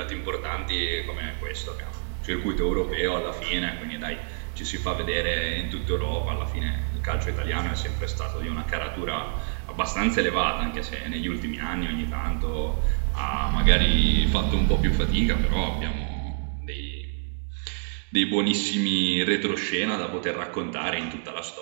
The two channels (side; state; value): left; silent; digital silence